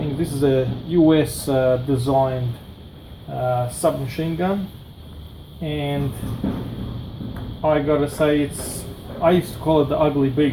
this is a US designed submachine gun, and I gotta say, I used to call it the ugly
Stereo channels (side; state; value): both; identical; correlation 1.00